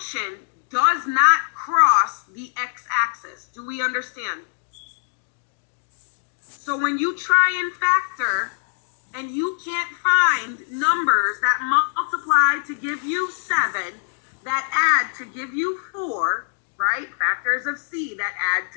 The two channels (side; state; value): right; silent; 63 dB below the other